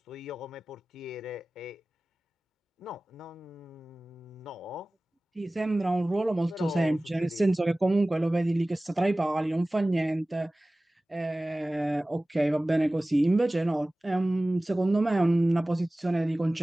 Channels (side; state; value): both; normal; correlation 0.98